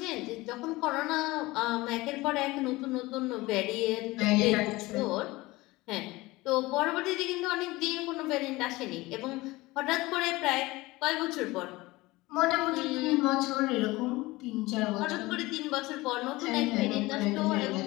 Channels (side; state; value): right; quieter; 20.5 dB